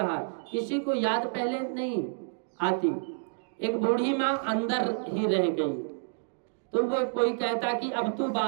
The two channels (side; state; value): left; silent; digital silence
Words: किसी को याद पहले नहीं आती। एक बूढ़ी माँ अंदर ही रह गई, तो वो कोई कहता कि अब तू